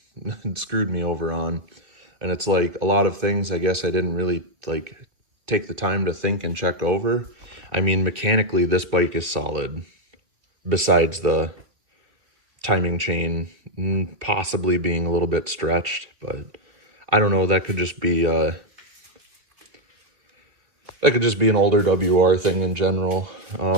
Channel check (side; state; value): left; late; 2.9 ms